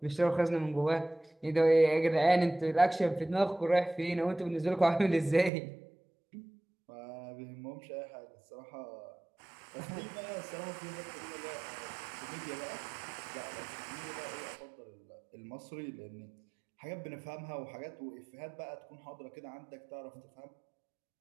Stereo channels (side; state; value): left; drops out; at 5.5 s